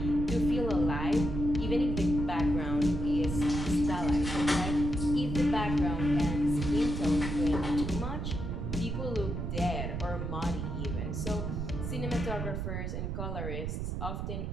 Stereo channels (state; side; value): noise; right; rumble, 3 dB below the sound